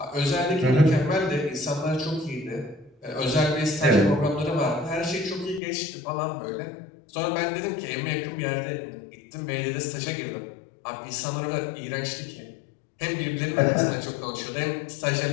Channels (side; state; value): right; drops out; at 5.6 s